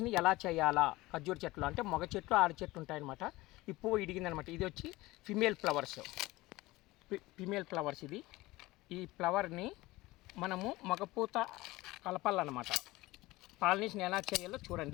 ఎలా చేయాలా, ఖర్జూర చెట్లు అంటే మగ చెట్లు ఆడ చెట్లు ఉంటాయన్నమాట. ఈ పువ్వు ఇడిగిందనమాట. ఇది వచ్చి ఫిమేల్ ఫ్లవర్స్ ఇది. ఈ ఫ్లవర్ని మనము మగపూత కలపాలన్నమాట. పాలినేషన్ ఎలా చేయాలో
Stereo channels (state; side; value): quieter; right; 19.6 dB